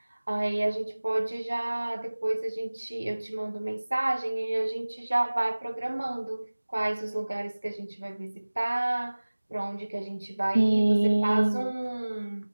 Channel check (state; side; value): inverted; both; correlation -1.00